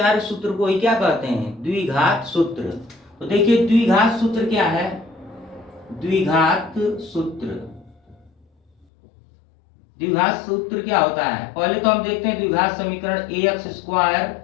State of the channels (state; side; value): drops out; right; at 8.8 s